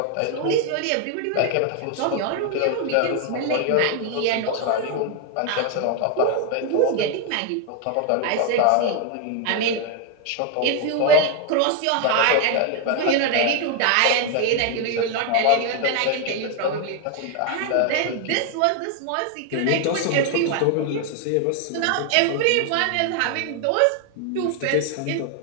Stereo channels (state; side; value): different; both; correlation 0.01